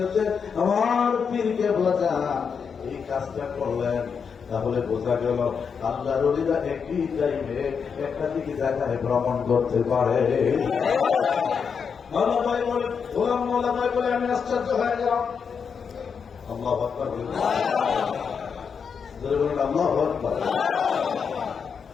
আমার পীরকে বোঝা এই কাজটা করলেন। তাহলে বোঝা গেল আল্লাহর ওলিরা একই টাইমে একাধিক জায়গায় ভ্রমণ করতে পারে। মাওলা ভাই বলে, গোলাম মাওলা ভাই বলে, আমি আশ্চর্য হয়ে গেলাম। আল্লাহু আকবার, আল্লাহু আকবার।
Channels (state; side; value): quieter; right; 6.3 dB